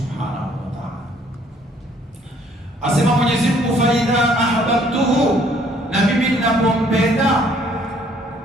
wa Ta'ala. Asema Mwenyezi Mungu, fa idha ahbabtuhu, na mimi ninapompenda,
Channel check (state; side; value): normal; both; correlation 0.62